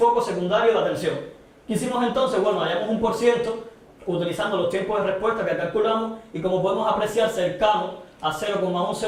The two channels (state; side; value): identical; both; correlation 1.00